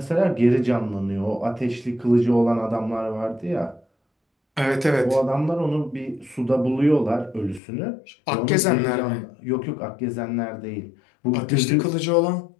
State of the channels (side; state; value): right; drops out; at 7.6 s